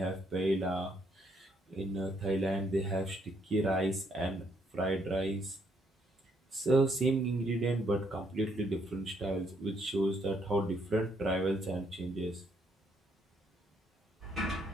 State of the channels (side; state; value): both; normal; correlation 0.71